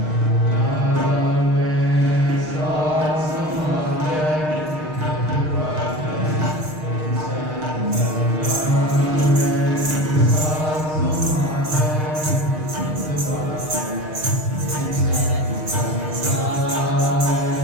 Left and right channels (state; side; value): late; left; 6.5 ms